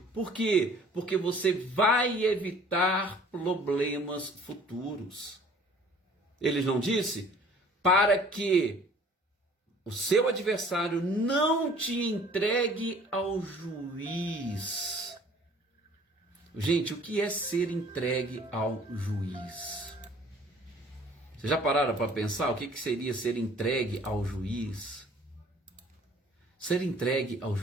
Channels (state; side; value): normal; both; correlation 0.53